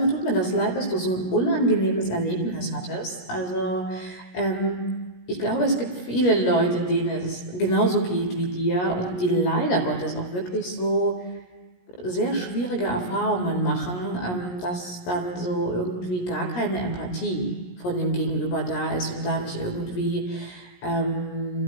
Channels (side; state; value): right; late; 17 ms